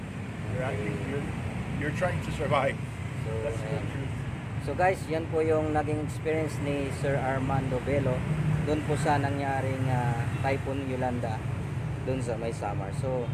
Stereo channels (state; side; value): identical; both; correlation 1.00